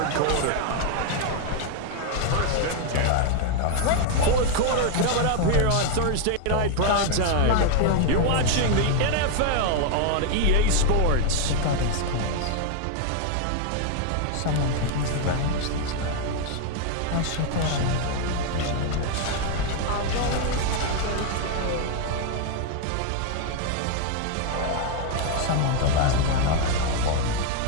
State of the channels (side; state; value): both; different; correlation 0.00